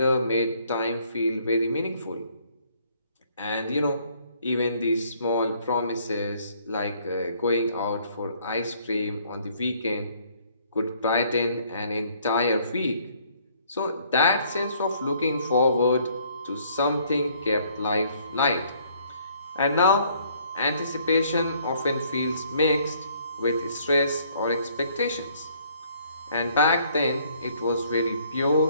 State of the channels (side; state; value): both; inverted; correlation -0.63